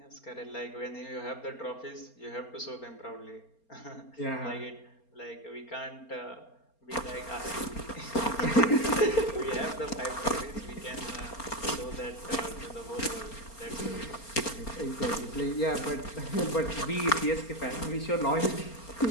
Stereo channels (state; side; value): late; right; 4.3 ms